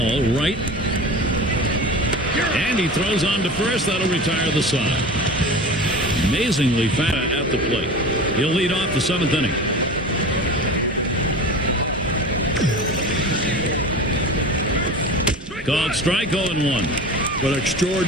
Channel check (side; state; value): both; normal; correlation 0.33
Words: right. And he throws on to first. That'll retire the side. Amazingly fast at the plate. He'll lead off the 7th inning. Called strike, 0-1. But an